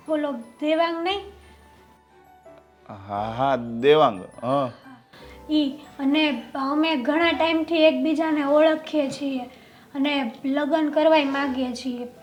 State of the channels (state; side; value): identical; both; correlation 1.00